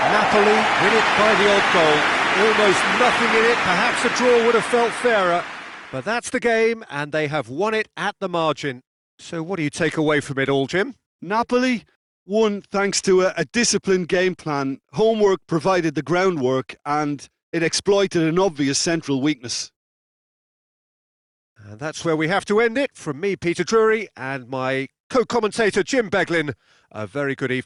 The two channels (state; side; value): identical; both; correlation 1.00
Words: Napoli win it by the odd goal. Almost nothing in it, perhaps a draw would have felt fairer. But that's the game and they have won it at the margin. So what do you take away from it all, Jim? Napoli won thanks to a disciplined game plan. Homework provided the groundwork and it exploited an obvious central weakness. And that's where we have to end it. From me, Peter Drury, and my co-commentator, Jim Beglin, a very good